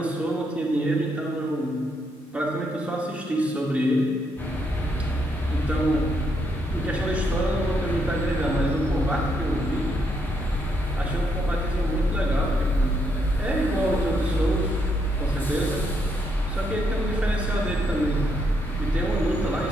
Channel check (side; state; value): both; normal; correlation 0.76